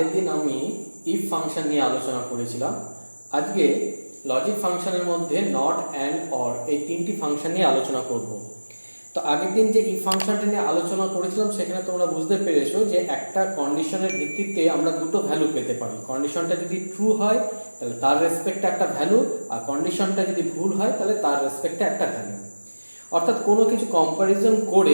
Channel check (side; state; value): both; inverted; correlation -1.00